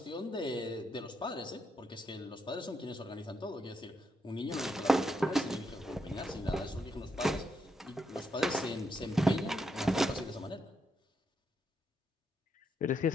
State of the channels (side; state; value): both; normal; correlation 0.80